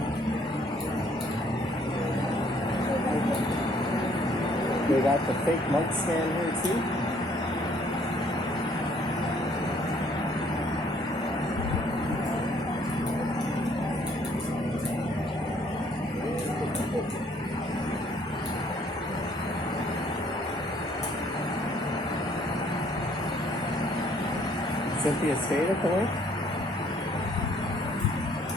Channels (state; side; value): normal; both; correlation 0.62